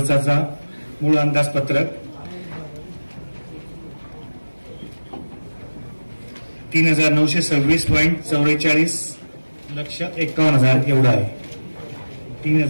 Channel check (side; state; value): both; inverted; correlation -1.00